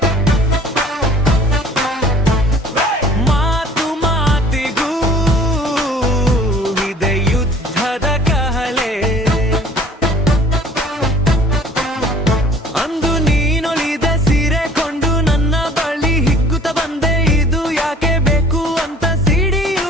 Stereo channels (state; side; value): normal; both; correlation 0.52